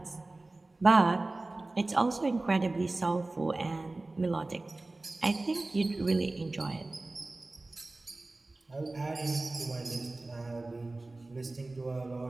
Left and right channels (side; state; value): left; quieter; 3.0 dB